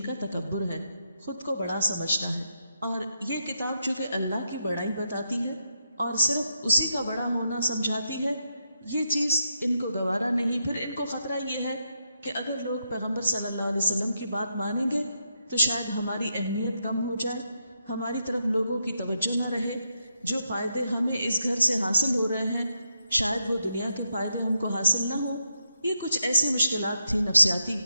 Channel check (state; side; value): inverted; both; correlation -0.82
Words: کا تکبر ہے، خود کو بڑا سمجھنا ہے، اور یہ کتاب چونکہ اللہ کی بڑائی بتاتی ہے اور صرف اسی کا بڑا ہونا سمجھاتی ہے، یہ چیز ان کو گوارا نہیں۔ پھر ان کو خطرہ یہ ہے کہ اگر لوگ پیغمبر صلی اللہ علیہ وسلم کی بات مانیں گے تو شاید ہماری اہمیت کم ہو جائے، ہماری طرف لوگوں کی توجہ نہ رہے، جو فائدے ہمیں اس گھر سے حاصل ہو رہے ہیں شاید وہ دنیا کے فائدے ہم کو حاصل نہ ہو۔ یہ کچھ ایسی مشکلات تھی نفسیاتی